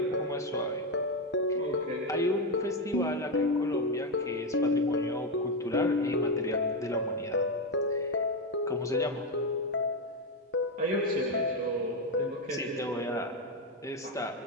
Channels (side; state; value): both; normal; correlation 0.08